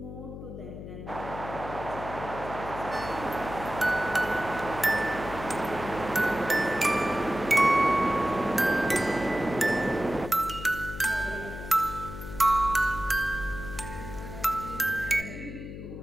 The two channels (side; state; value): left; noise; hum, 10 dB below the sound